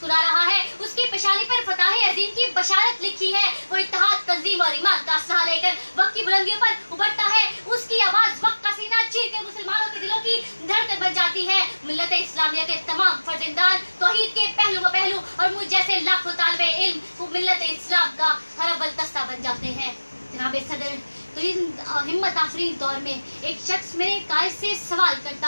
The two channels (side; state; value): both; inverted; correlation -1.00